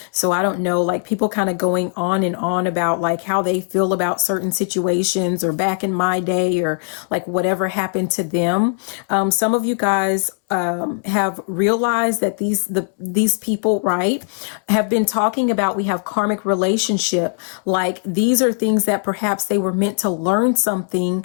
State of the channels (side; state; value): right; silent; 66 dB below the other